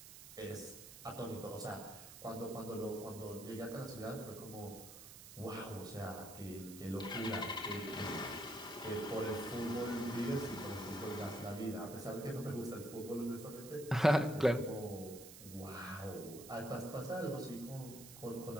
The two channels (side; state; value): right; noise; hiss, 14 dB below the sound